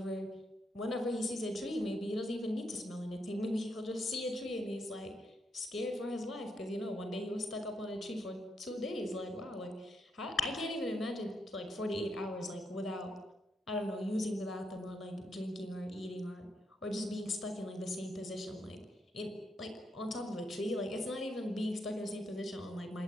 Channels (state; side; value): normal; both; correlation 0.80